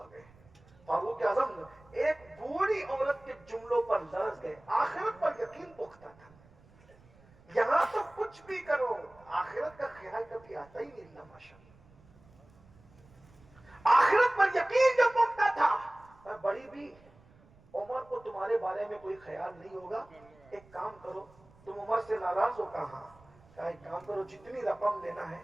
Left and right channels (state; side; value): noise; right; rumble, 27 dB below the sound